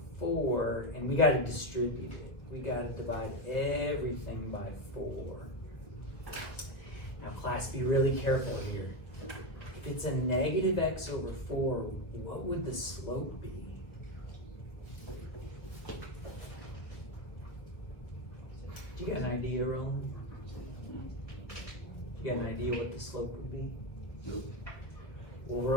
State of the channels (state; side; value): late; right; 1.4 ms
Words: 4, and we got to distribute it. We got to divide everything by 4. Now, class, be really careful here. If it's a negative x over 4, what would the slope be? Do you got an idea, Roland? You got an idea what the slope would be? Nope. Well,